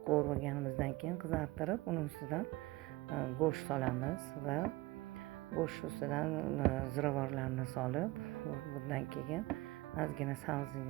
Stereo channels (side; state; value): left; quieter; 20.5 dB